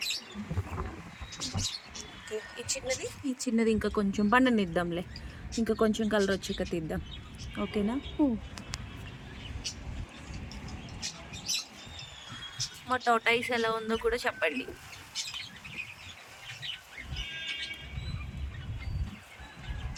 ఈ చిన్నది ఇంకా కొంచెం పండనిద్దాంలే. ఇంకా కొంచెం కలర్ వచ్చాక తీద్దాం, ఓకేనా? మా టోటైస్ ఎలా ఉందో కూడా చెప్పండి.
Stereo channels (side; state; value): both; identical; correlation 1.00